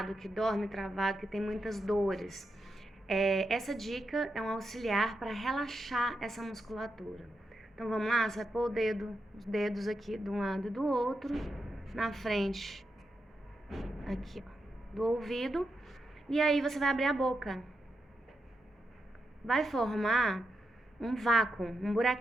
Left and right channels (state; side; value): normal; both; correlation 0.85